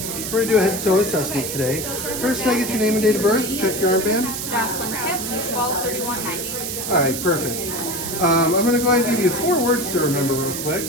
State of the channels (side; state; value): right; noise; hiss, 5 dB below the sound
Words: We're going to do a head-to-toe assessment today. First, can I get your name and date of birth? Check your armband. Jocelyn Kipp, 12/31/90. All right, perfect. I'm going to go ahead and give you 4 words to remember real quick.